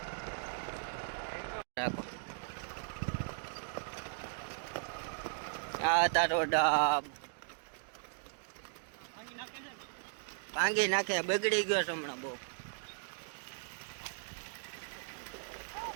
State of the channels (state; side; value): silent; left; digital silence